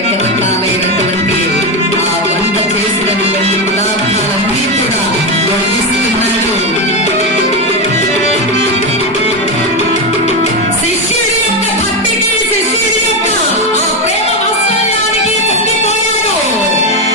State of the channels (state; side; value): normal; both; correlation 0.12